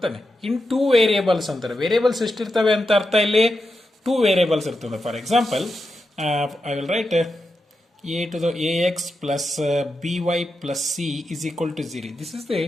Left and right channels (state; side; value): normal; both; correlation 0.88